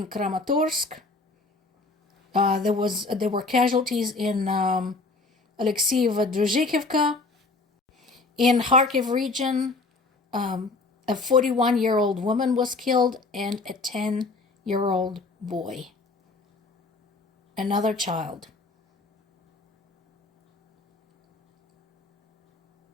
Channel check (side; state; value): right; quieter; 3.6 dB